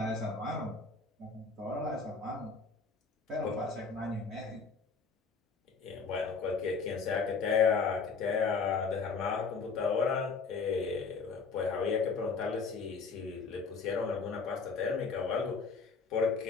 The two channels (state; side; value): quieter; right; 4.8 dB